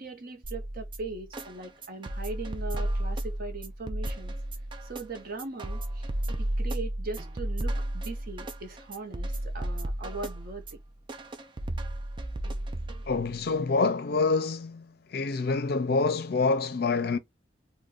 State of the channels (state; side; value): normal; both; correlation 0.29